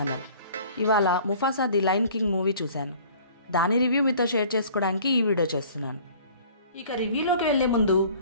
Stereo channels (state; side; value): inverted; both; correlation -0.50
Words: ఇవాళ Mufasa the lion king movie చూశాను. దాని రివ్యూ మీతో షేర్ చేసుకోవడానికి ఈ వీడియో చేస్తున్నాను. ఇక రివ్యూలోకి వెళ్లే ముందు